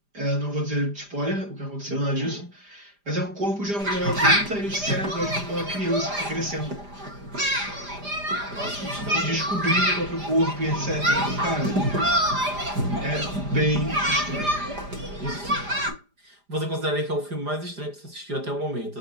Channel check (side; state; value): left; late; 5.0 ms